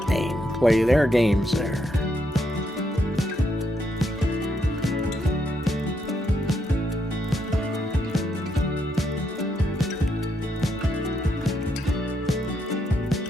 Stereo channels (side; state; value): both; normal; correlation 0.78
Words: play their games there.